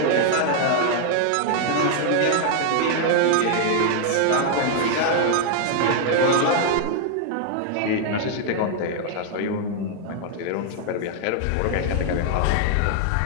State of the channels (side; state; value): both; different; correlation 0.00